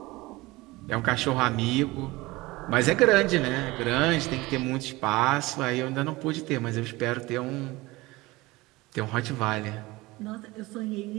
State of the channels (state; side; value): quieter; left; 21.0 dB